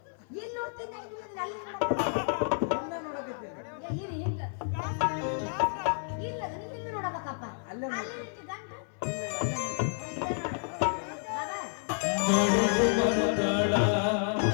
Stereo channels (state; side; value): silent; right; 57 dB below the other